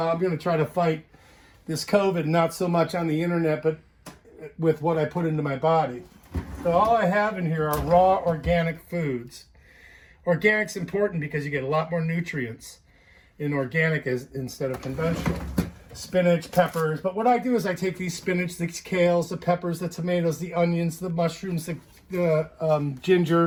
going to try to fight this COVID, not so much on the internet, but with what I put into my body. So all I have in here are raw organic foods. Organic's important because you get a lot more nutrients in organic instead of conventional. Spinach, peppers. But what I do is I take these spinach, the kales, the peppers, the tomatoes, the onions, the mushrooms, the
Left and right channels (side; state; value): both; identical; correlation 1.00